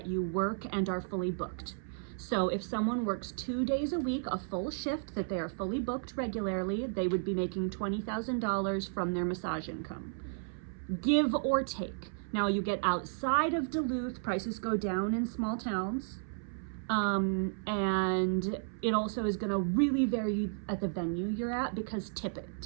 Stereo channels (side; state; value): left; silent; 55 dB below the other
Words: you work and are fully booked. So if someone works 2 days a week, a full shift that they are fully booked regularly, they would be making $20,000 from their massage income. Give or take. Now you get outside of Duluth, prices go down in small towns. And it also is gonna really vary at the venue you're at because